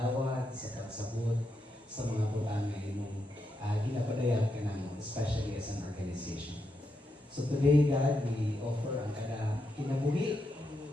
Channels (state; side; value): normal; both; correlation 0.83